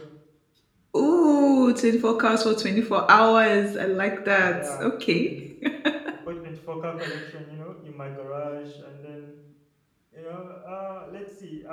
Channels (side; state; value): both; identical; correlation 1.00